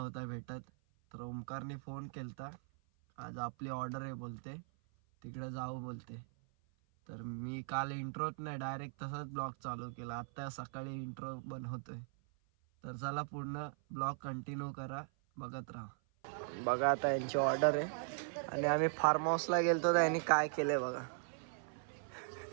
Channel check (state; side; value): silent; left; 52 dB below the other